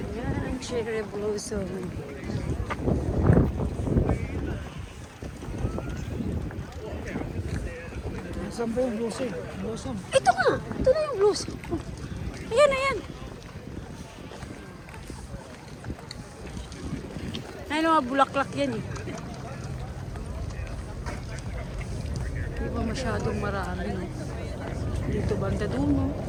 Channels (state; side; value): identical; both; correlation 1.00